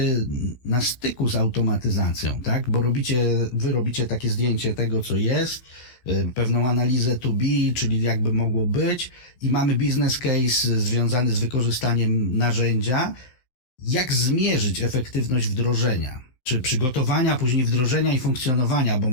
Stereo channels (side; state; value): right; late; 16 ms